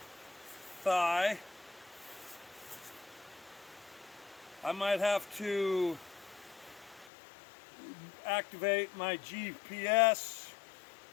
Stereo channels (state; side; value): drops out; right; at 7.1 s